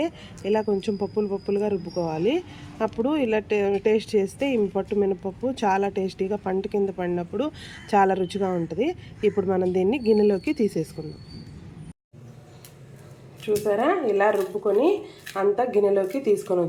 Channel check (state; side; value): identical; both; correlation 1.00